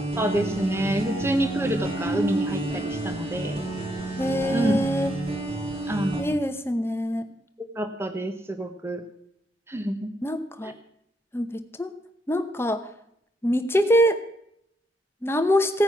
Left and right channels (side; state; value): both; normal; correlation 0.77